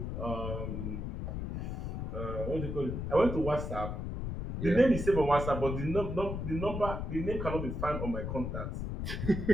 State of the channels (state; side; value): noise; left; rumble, 4 dB below the sound